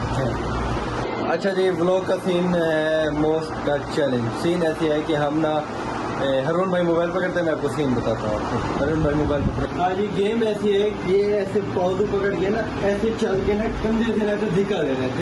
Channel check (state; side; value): identical; both; correlation 1.00